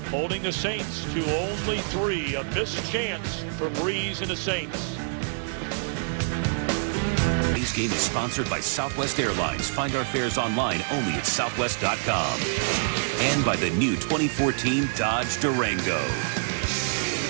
holding the Saints to only 3. A missed chance for Breeze and the Saints. Today's game is sponsored by Southwest Airlines. Find our fares online only at southwest.com. And by the new 2014 Dodge Durango.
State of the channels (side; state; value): left; silent; digital silence